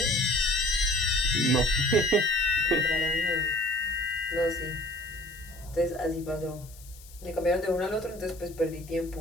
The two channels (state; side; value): noise; left; hiss, 21 dB below the sound